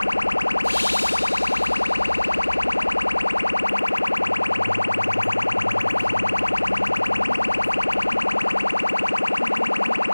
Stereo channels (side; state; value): both; inverted; correlation -1.00